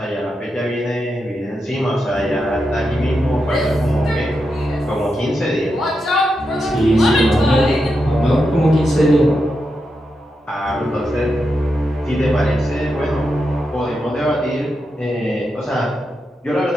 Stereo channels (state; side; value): normal; both; correlation 0.86